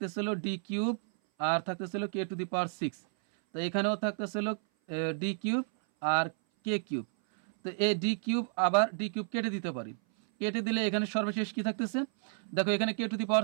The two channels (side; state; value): left; silent; 57 dB below the other